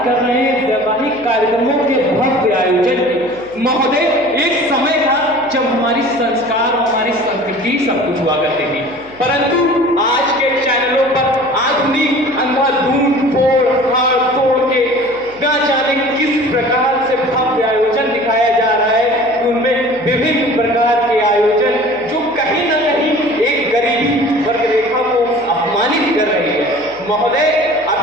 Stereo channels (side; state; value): left; noise; hum, 25 dB below the sound